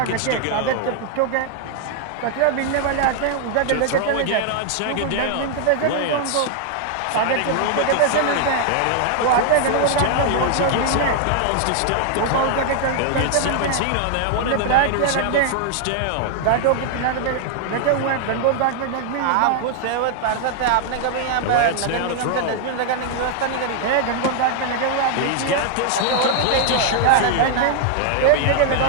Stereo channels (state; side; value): different; both; correlation 0.00